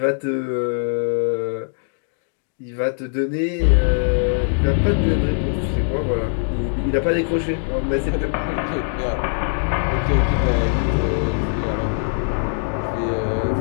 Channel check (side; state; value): right; silent; digital silence